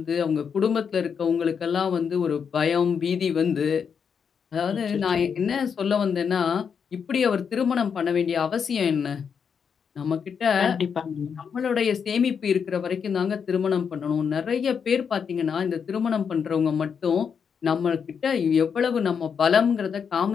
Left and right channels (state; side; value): quieter; right; 6.7 dB